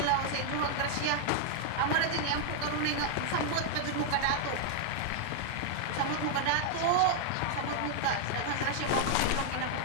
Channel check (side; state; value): both; different; correlation 0.00